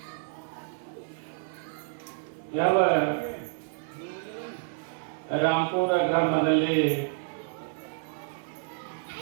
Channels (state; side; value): silent; left; digital silence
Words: ಯಾವ ರಾಮಪುರ ಗ್ರಾಮದಲ್ಲಿ